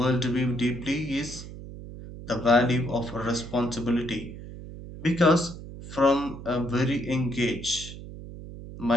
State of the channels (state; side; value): noise; right; hum, 13 dB below the sound